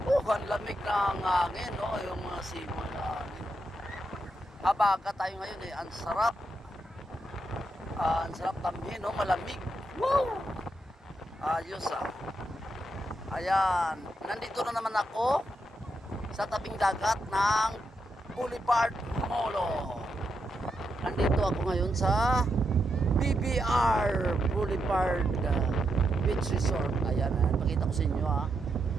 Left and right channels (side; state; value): both; normal; correlation 0.83